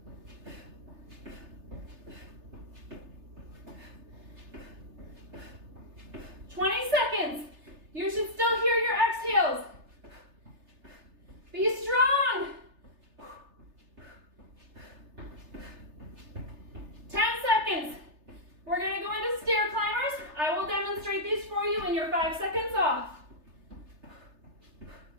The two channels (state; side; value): late; left; 3.3 ms